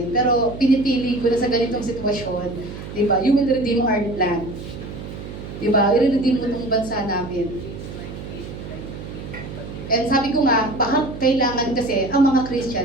Pero pinipili ko na sa ganitong sitwasyon. Di ba? You will redeem our land. Di ba? I-redeem mo itong bansa namin. And sabi ko nga, baka kailangan kasi ang mga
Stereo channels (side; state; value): right; noise; hum, 11 dB below the sound